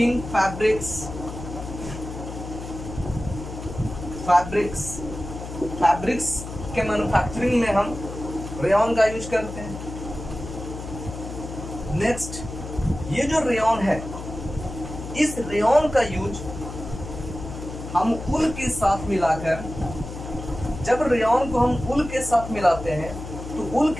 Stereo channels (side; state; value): left; noise; hum, 10 dB below the sound